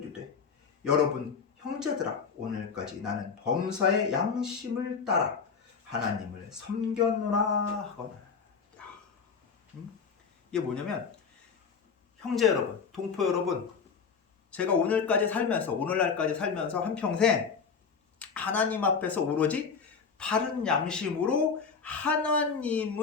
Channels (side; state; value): right; quieter; 5.8 dB